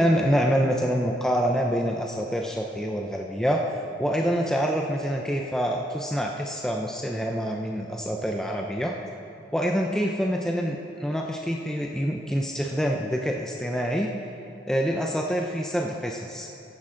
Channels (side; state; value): both; normal; correlation 0.78